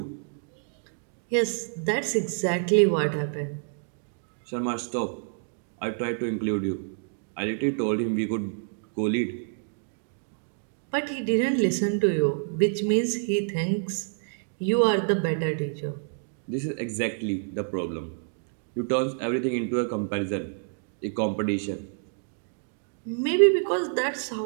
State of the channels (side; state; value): left; silent; digital silence